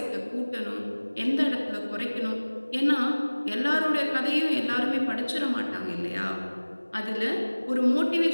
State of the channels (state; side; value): inverted; both; correlation -1.00